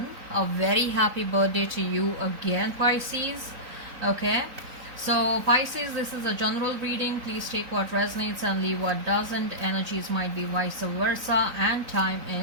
A very happy birthday to you again, Pisces. Okay, so Pisces, this is a general reading. Please take what resonates and leave what doesn't. Energies might be vice versa and time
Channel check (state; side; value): late; left; 3.9 ms